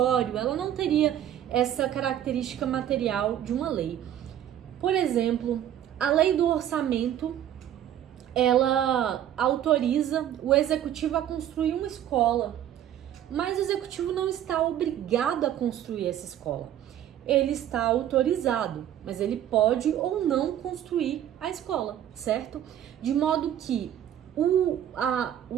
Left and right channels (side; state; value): left; quieter; 10.9 dB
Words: ela não teria essa característica material de uma lei. Por exemplo, a lei do orçamento, ela autoriza o executivo a construir uma escola, mas o executivo não está obrigado a construir essa escola. Ele está autorizado, mas ele pode ou não construir a escola, certo? De modo que o